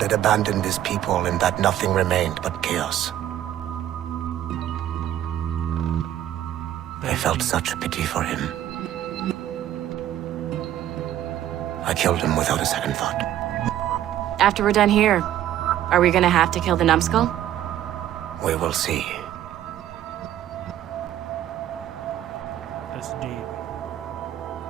had abandoned his people and that nothing remained but chaos. I felt such pity for him. I killed him without a second thought. After we're done here, are we gonna have to kill the numbskull? We will see. That's deep.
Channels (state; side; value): quieter; left; 12.0 dB